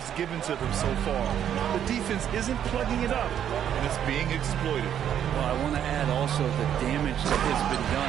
given to them so far. The defense isn't plugging it up, and it's being exploited. Well, I want to add also the damage that has been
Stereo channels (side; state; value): left; quieter; 9.7 dB